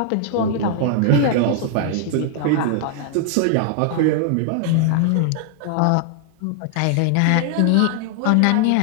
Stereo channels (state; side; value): different; both; correlation 0.00